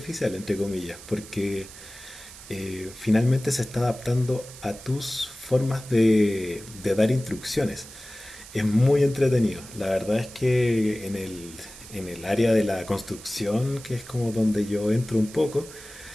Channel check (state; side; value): noise; right; hiss, 17 dB below the sound